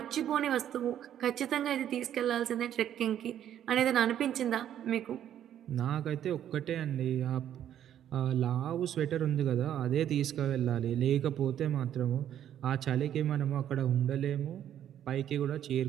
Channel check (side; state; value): left; quieter; 10.5 dB